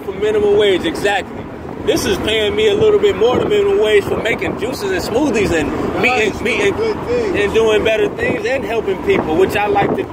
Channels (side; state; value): both; identical; correlation 1.00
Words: for minimum wage. Exactly. This is paying me a little bit more than minimum wage for making juices and smoothies and meeting and doing better things and helping people, which I like to